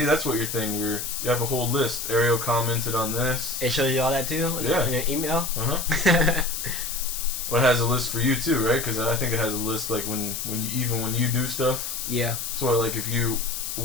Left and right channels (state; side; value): noise; left; hiss, 5 dB below the sound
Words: that's what your thing. You have a whole list. Ariel commented on this. It shows you all that too. Yeah. In your email. Well, it has a list for you too, right? Because I think it has a list like when you do stuff. Yeah. So like if you